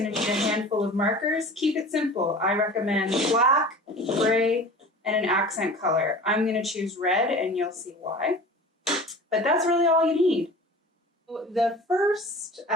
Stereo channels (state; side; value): normal; both; correlation 0.39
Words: to need a handful of markers. Keep it simple. I recommend black, gray, and an accent color. I'm going to choose red, and you'll see why. But that's really all you need. The first